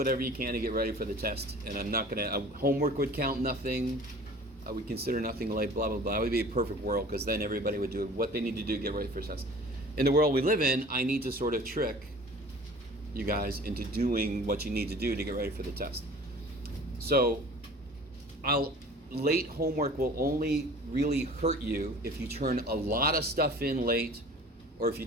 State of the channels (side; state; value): both; normal; correlation 0.45